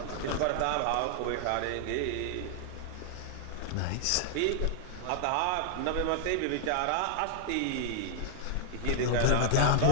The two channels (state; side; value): different; both; correlation -0.01